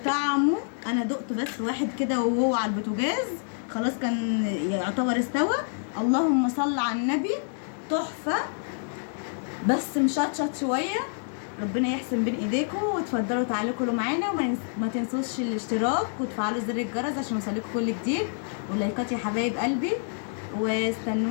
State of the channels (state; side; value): silent; right; digital silence